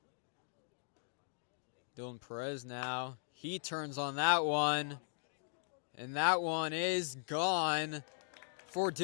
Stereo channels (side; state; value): right; silent; digital silence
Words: Dylan Perez now. He turns on that one. And that one is gone for